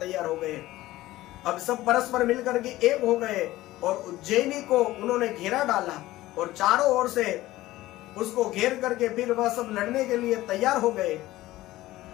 हो गए। अब सब परस्पर मिलकर के एक हो गए और उज्जैनी को उन्होंने घेरा डाला, और चारों ओर से उसको घेर करके फिर वह सब लड़ने के लिए तैयार हो गए।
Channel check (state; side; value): quieter; right; 16.6 dB